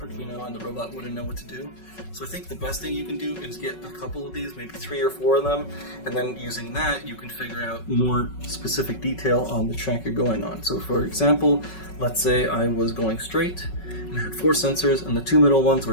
and the robot wouldn't know what to do. So I think the best thing you can do is get a couple of these, maybe 3 or 4 of them, and then using that you can figure out more specific detail on the track you're going on. So for example, let's say I was going straight and I had 4 sensors and the 2 middle ones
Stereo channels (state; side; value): late; right; 5.4 ms